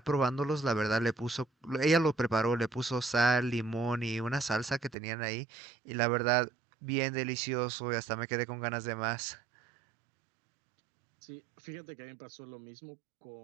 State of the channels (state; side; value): drops out; left; at 5.0 s